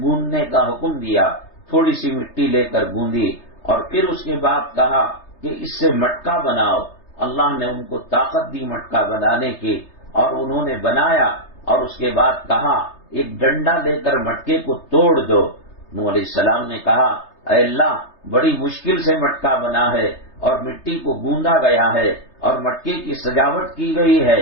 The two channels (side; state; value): right; late; 3.3 ms